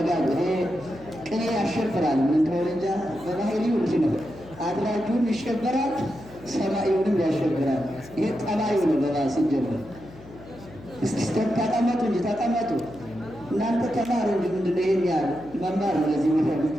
ይሄ ቅኔ ያሸብራል። ምን እንደሆነ እንጃ በባህሪው እንጂ ነው። አድራጁን ይሸበራል፣ ሰማዩንም ያሸብራል። ይሄ ጠባዩ ነው። በባስ ሲጀምር እስቲ ተቀመጡ እንጂ ተቀመጡ። እናንተ ተማሩ እንጂ ምንድን ነው ይሄን ያህል መማር ነው ለዚህ የሚፈልግ።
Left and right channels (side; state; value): left; noise; hum, 19 dB below the sound